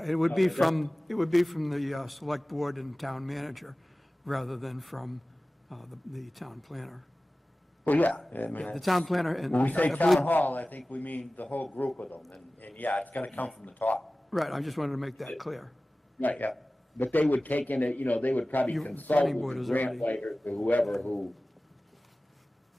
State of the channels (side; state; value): both; normal; correlation 0.97